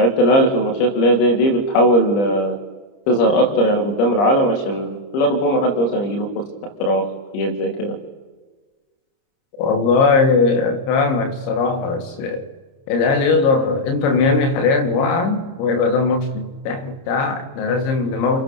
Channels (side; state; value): right; late; 30 ms